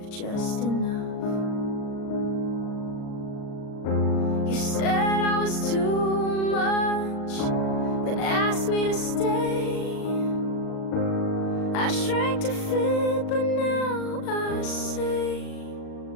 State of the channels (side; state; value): right; late; 39 ms